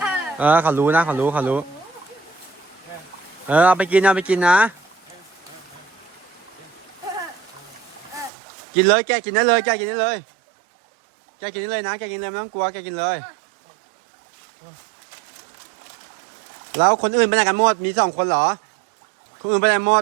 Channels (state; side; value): drops out; left; at 8.3 s